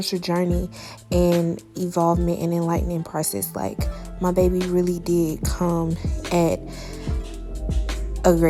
journey and evolvement and enlightening process. Like, my baby really did come at a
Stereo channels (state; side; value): identical; both; correlation 1.00